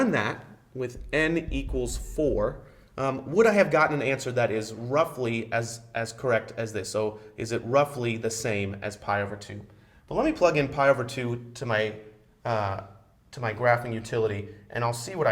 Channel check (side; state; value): both; identical; correlation 1.00